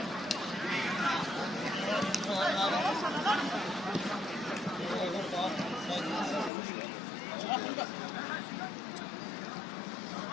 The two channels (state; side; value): drops out; right; at 6.5 s